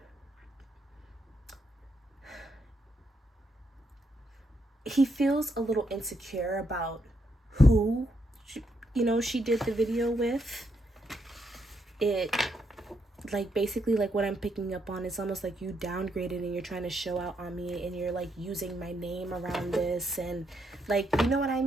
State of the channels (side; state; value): both; normal; correlation 0.78